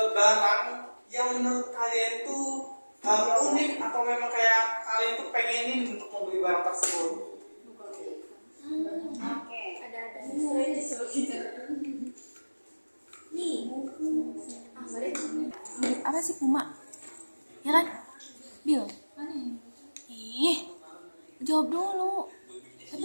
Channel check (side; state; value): both; inverted; correlation -1.00